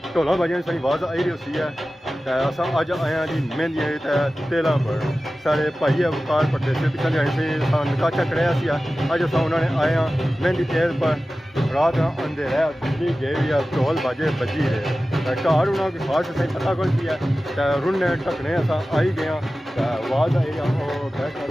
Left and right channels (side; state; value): both; normal; correlation 0.95